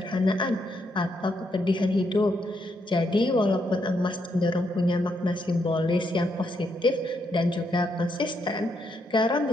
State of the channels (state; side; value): normal; both; correlation 0.78